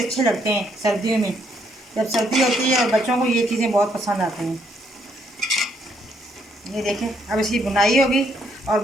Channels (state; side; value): normal; both; correlation 0.71